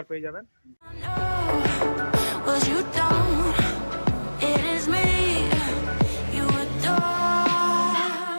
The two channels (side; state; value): both; inverted; correlation -1.00